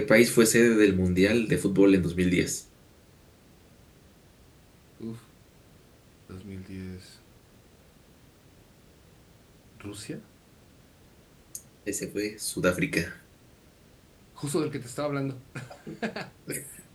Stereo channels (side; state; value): both; identical; correlation 1.00